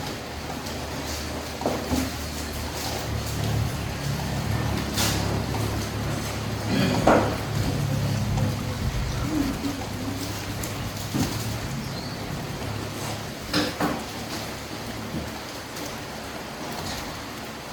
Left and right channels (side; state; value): both; identical; correlation 1.00